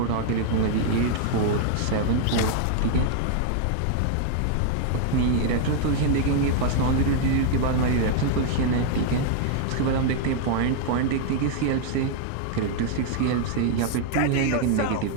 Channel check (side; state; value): both; different; correlation 0.00